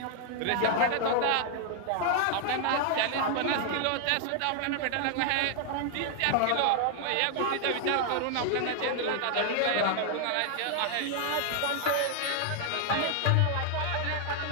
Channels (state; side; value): different; both; correlation 0.00